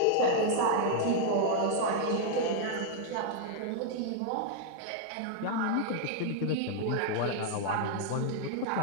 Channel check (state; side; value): different; both; correlation 0.00